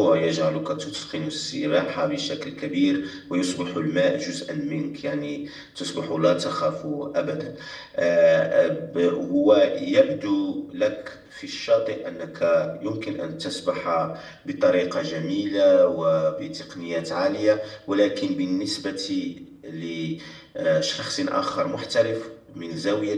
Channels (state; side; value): identical; both; correlation 1.00